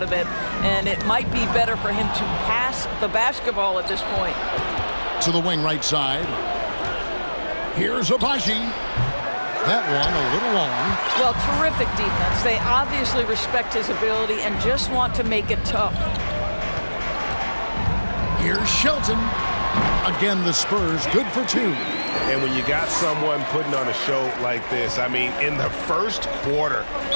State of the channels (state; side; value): inverted; both; correlation -1.00